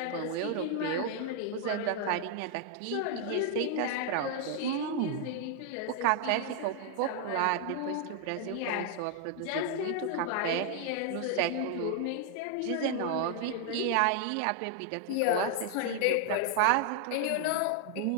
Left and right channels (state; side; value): different; both; correlation 0.00